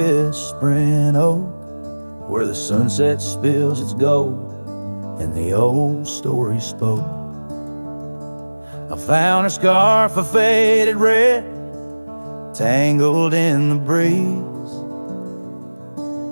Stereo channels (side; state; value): both; inverted; correlation -1.00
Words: oak, where the sunset spills its gold and the old story spoke. I found a scarf of faded red, tangled in the breeze,